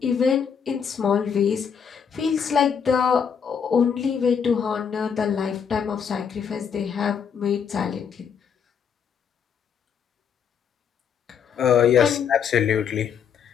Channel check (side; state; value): right; quieter; 7.2 dB